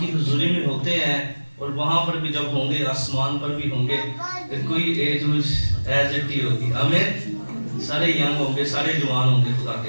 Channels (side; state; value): both; inverted; correlation -1.00